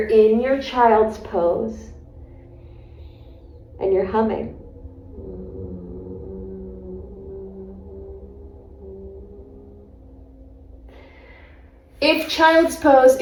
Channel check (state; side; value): identical; both; correlation 1.00